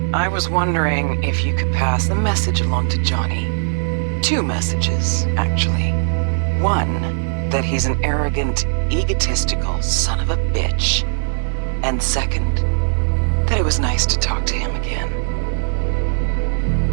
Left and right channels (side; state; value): left; silent; 61 dB below the other